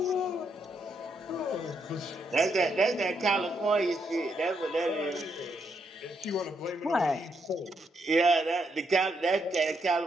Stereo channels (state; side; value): normal; both; correlation 0.78